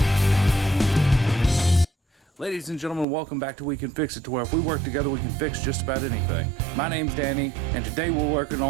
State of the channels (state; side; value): drops out; left; at 3.1 s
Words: Ladies and gentlemen, welcome back to We Can Fix It, to where if we work together we can fix just about anything. My name's Danny, and today we're working